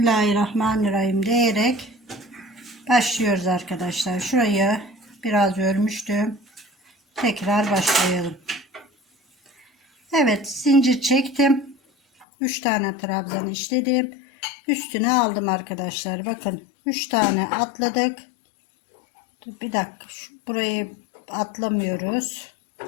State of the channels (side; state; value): right; drops out; at 12.2 s